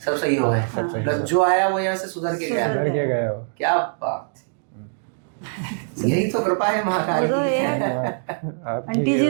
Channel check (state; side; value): silent; left; digital silence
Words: सब सही हो गए? सब सही मतलब जो आया वो यहाँ से सुधर के गया? घर के गए हो। क्या बात है। यही तो कृपा है महाकाल वो तो की। आप आंटी जी